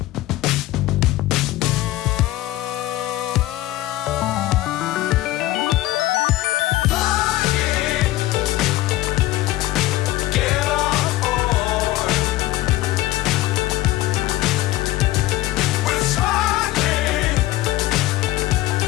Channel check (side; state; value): right; quieter; 16.3 dB